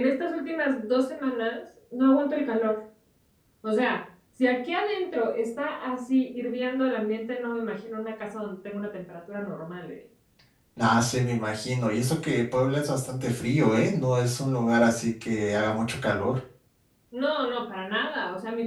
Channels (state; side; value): identical; both; correlation 1.00